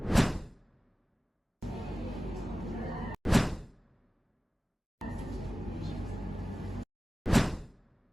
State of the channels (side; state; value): both; normal; correlation 0.96